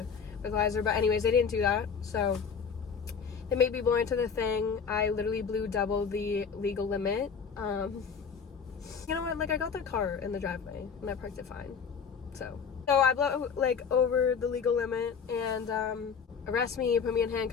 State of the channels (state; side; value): quieter; right; 6.2 dB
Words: breathalyzer. But anyways, they didn't do that, so they made me blow into the thing. I literally blew double the legal limit. You know what, like I got the car in the driveway and I parked it fine, so I blow like over the legal limit, and arrest me, put me in